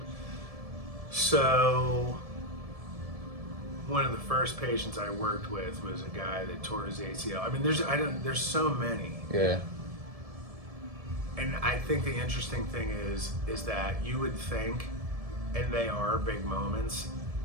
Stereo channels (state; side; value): late; left; 1.7 ms